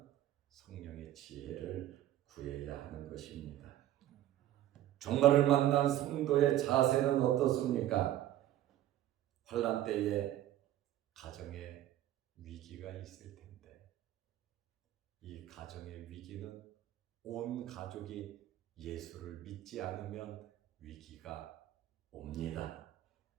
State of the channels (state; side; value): quieter; left; 13.2 dB